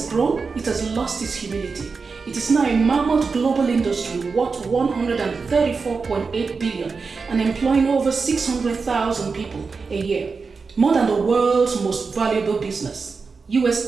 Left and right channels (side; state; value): left; quieter; 4.8 dB